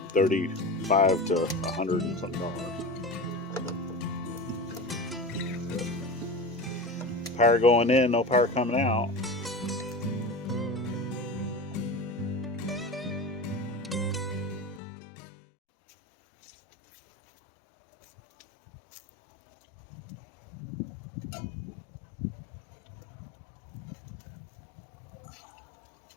$35 to $100 and something dollars. Power going in, no power coming out.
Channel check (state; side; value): drops out; right; at 14.8 s